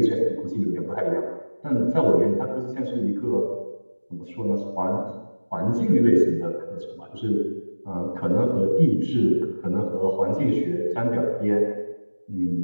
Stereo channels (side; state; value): both; inverted; correlation -1.00